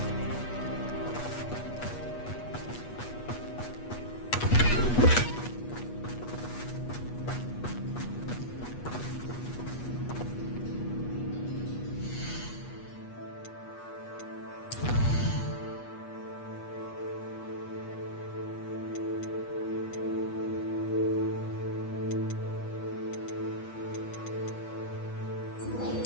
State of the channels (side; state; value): right; late; 8.3 ms